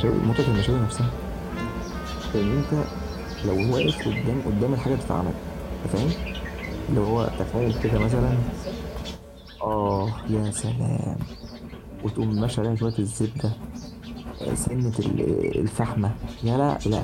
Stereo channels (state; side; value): identical; both; correlation 1.00